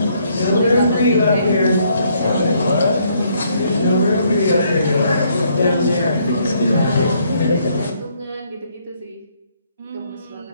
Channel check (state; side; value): inverted; both; correlation -0.69